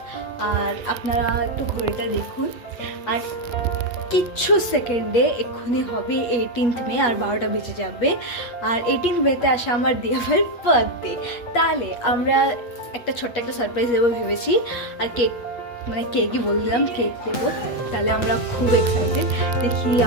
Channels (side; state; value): right; late; 8.4 ms